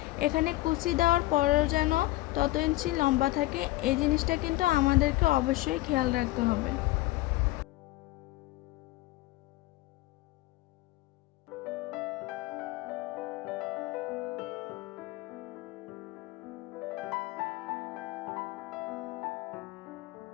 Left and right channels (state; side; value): quieter; right; 18.4 dB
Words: এখানে কুচি দেওয়ার পরেও যেন তত ইঞ্চি লম্বা থাকে, এই জিনিসটা কিন্তু আমাদেরকে অবশ্যই খেয়াল রাখতে হবে।